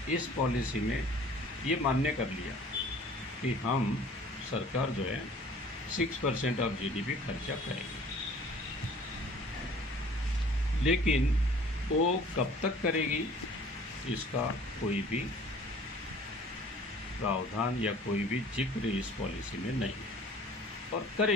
इस पॉलिसी में ये मान्य कर लिया कि हम सरकार जो है 6% ऑफ जीडीपी खर्चा करेगी। लेकिन वो कब तक करेगी इसका कोई भी प्रावधान या कोई भी जिक्र इस पॉलिसी में नहीं है, और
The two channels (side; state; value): both; normal; correlation 0.50